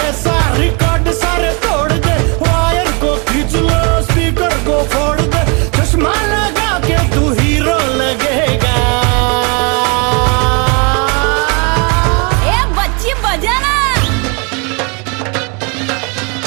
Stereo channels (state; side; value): quieter; left; 32.8 dB